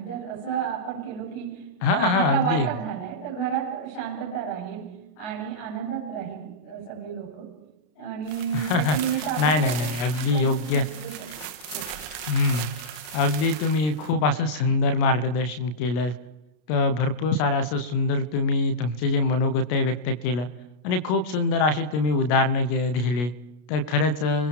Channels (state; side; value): late; right; 33 ms